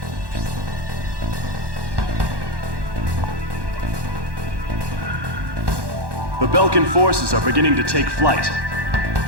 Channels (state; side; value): late; left; 1.1 ms